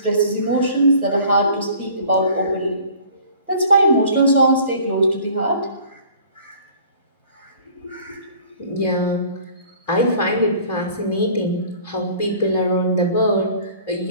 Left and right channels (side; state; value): both; inverted; correlation -0.50